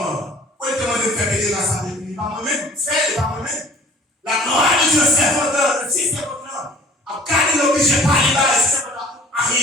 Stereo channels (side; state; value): both; normal; correlation 0.51